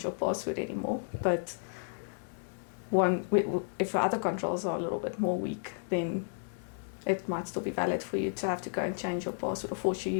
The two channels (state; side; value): silent; right; digital silence